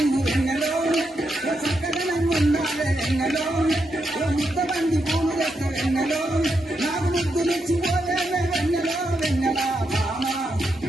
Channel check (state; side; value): normal; both; correlation 0.83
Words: వెన్నెలో ఓ చక్కదనం ఉండాలే వెన్నెలో ఓ ముద్దబంది పూలు లెక్క వెన్నెలో నాకు ముద్దులిచ్చిపోయే వెన్నెలో వెన్నెలా భామ